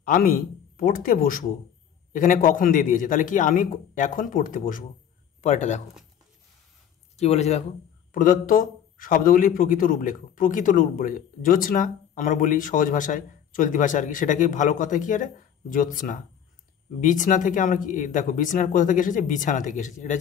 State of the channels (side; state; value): right; quieter; 9.0 dB